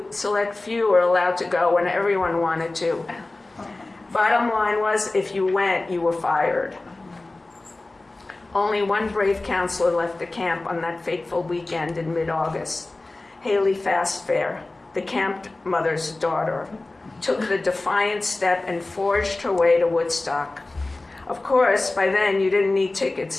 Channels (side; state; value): right; quieter; 3.0 dB